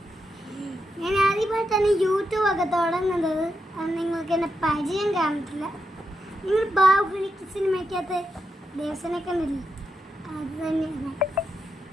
ഞാൻ ആദ്യമായി തന്നെ യൂട്യൂബ് ഒക്കെ തുടങ്ങുന്നത്. അത് നിങ്ങൾക്ക് എന്നെ പരിചയം കാണത്തില്ല. നിങ്ങൾ ബാഹുബലി സിനിമയ്ക്കകത്ത് ദേവസനെ കണ്ടില്ലേ? അത് തന്നെയാണ്.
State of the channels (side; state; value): both; normal; correlation 0.85